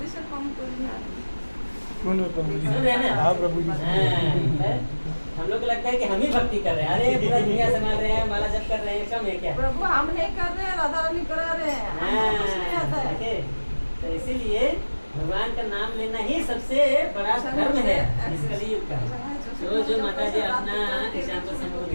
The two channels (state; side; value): inverted; both; correlation -1.00